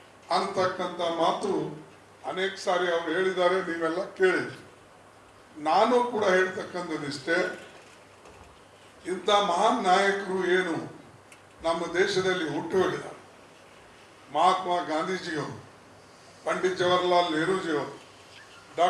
ಅಂತಕ್ಕಂಥ ಮಾತು ಅನೇಕ ಸಾರಿ ಅವರು ಹೇಳಿದ್ದಾರೆ, ನೀವೆಲ್ಲ ಕೇಳಿದ್ರಿ. ನಾನು ಕೂಡ ಹೇಳ್ತಕ್ಕಂಥದ್ದಿಷ್ಟೇ, ಇಂಥ ಮಹಾನ್ ನಾಯಕರು ಏನು ನಮ್ಮ ದೇಶದಲ್ಲಿ ಹುಟ್ಟು ಹೋಗಿದ್ದಾರೆ, ಮಹಾತ್ಮ ಗಾಂಧೀಜಿಯವರು, ಪಂಡಿತ್ ಜವಾಹರ್ಲಾಲ್ ನೆಹರೂಜಿಯವರು,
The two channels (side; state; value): both; identical; correlation 1.00